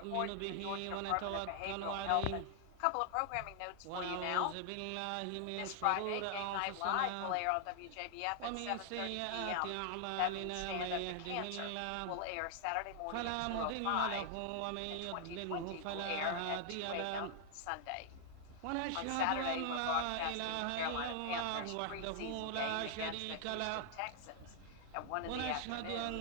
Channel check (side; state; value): both; different; correlation 0.00